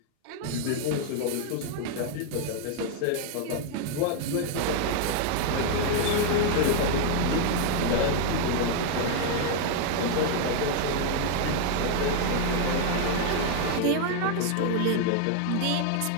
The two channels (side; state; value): both; different; correlation 0.01